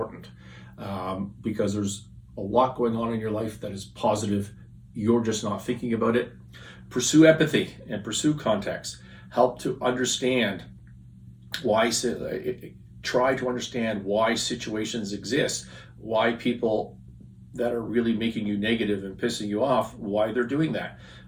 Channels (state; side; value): identical; both; correlation 1.00